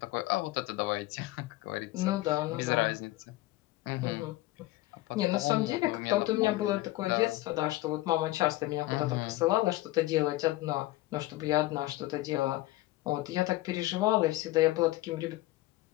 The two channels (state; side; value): quieter; right; 18.1 dB